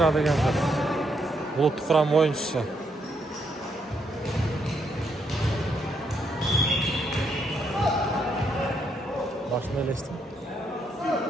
деген кыз. Булуттук курам оюнчусу. Башына элестим.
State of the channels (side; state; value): both; normal; correlation 0.76